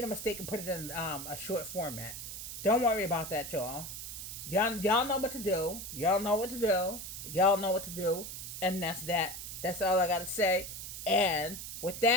a mistake and put it in, a short format. Don't worry about that, y'all. Y'all know what to do. Y'all know what to do. Y'all know what to do. And that's that. That's all I gotta say. And with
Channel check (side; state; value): right; noise; hiss, 8 dB below the sound